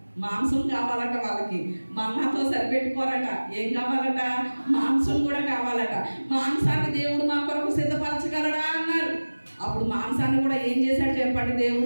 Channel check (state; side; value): inverted; both; correlation -1.00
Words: మాంసం కావాలట వాళ్ళకి, మన్నాతో సరిపెట్టుకోరట. ఏం కావాలట? మాంసం కూడా కావాలట. మాంసాన్ని దేవుడు మా కొరకు సిద్ధపరచగలడా అన్నారు. అప్పుడు మాంసాన్ని కూడా ఏం చేశాడు చెప్పండి?